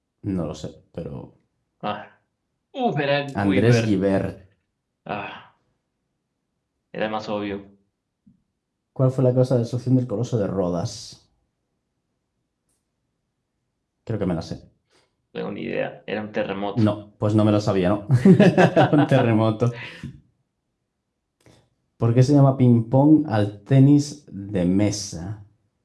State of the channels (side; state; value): both; identical; correlation 1.00